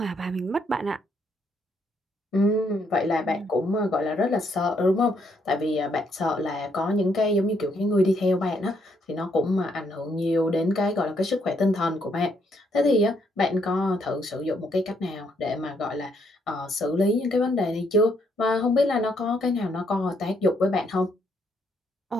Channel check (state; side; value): normal; both; correlation 0.73